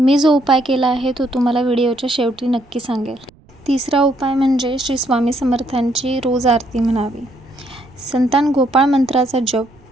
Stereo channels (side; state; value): right; noise; rumble, 29 dB below the sound